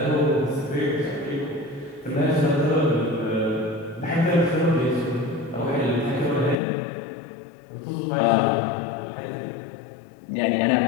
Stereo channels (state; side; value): drops out; right; at 6.6 s